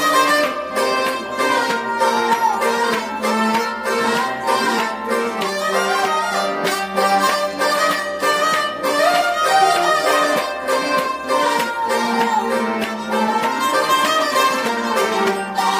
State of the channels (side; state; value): both; identical; correlation 1.00